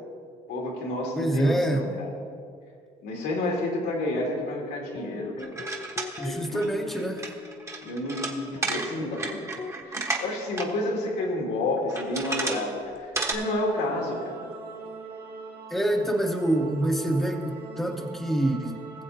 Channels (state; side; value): normal; both; correlation 0.61